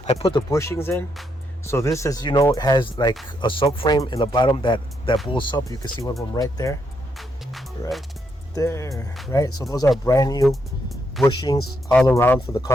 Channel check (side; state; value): both; normal; correlation 0.78